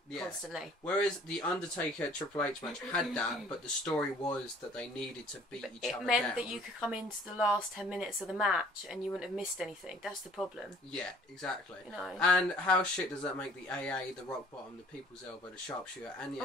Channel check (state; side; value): normal; both; correlation 0.54